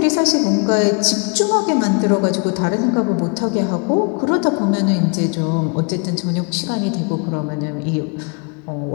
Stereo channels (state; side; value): quieter; right; 34.1 dB